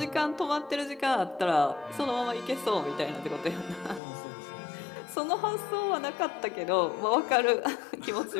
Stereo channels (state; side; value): drops out; right; at 4.0 s